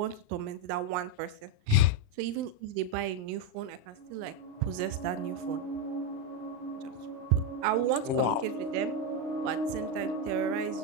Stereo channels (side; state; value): left; late; 39 ms